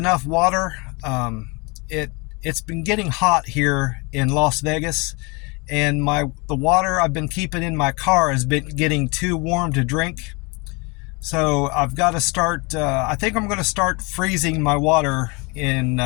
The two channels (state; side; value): quieter; right; 28.5 dB